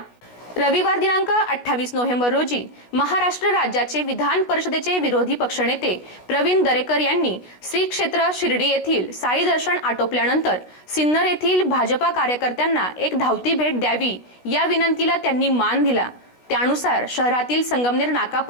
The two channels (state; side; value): late; right; 16 ms